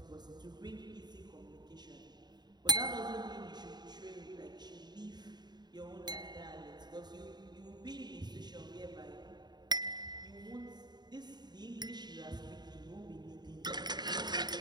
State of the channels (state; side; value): late; left; 0.20 ms